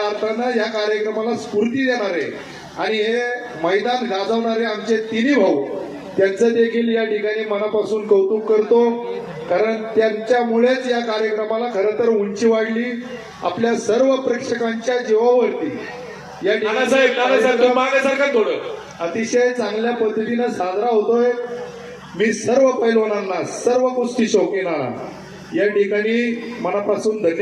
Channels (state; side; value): identical; both; correlation 1.00